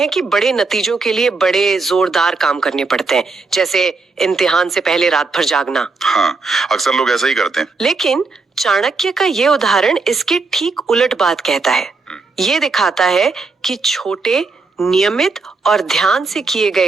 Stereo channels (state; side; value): quieter; left; 3.9 dB